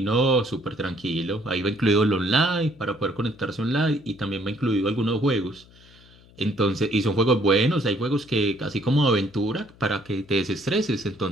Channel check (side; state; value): left; noise; hum, 26 dB below the sound